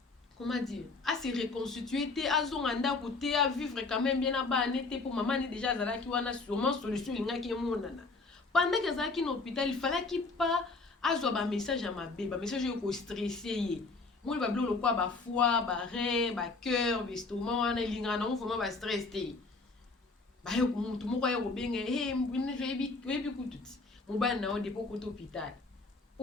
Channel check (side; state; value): right; quieter; 3.8 dB